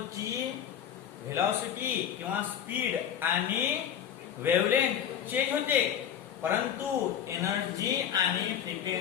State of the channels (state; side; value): quieter; right; 9.3 dB